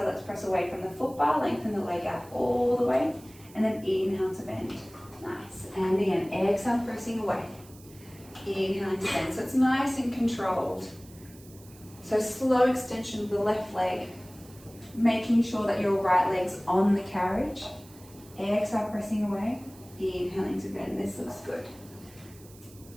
let's press away from the foot bar, lengthen the leg out all the way. And then inhale to bend. Nice. And again, exhale, pressing away. Inhaling to bend. So it's nice and controlled. So slow extension of the left leg, making sure that your right leg's on the carriage. Exhale, pressing away. Inhaling to bend. This looks good.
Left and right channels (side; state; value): right; noise; hiss, 23 dB below the sound